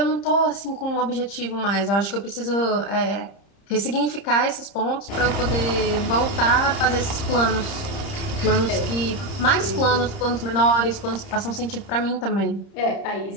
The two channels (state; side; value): late; right; 30 ms